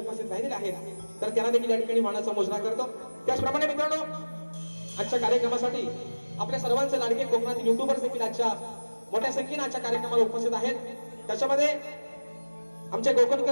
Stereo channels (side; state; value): both; inverted; correlation -1.00